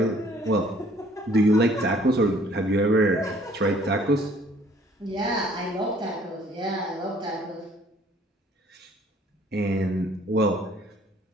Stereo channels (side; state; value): both; normal; correlation 0.58